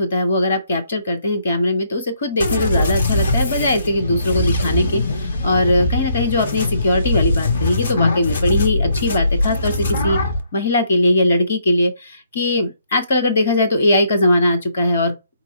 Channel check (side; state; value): both; inverted; correlation -0.71